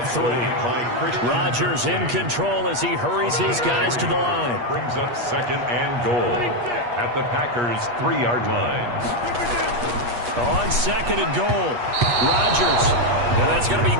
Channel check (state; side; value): late; left; 8.4 ms